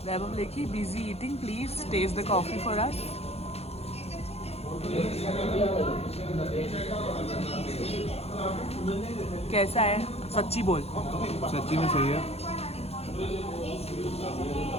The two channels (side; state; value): right; late; 0.30 ms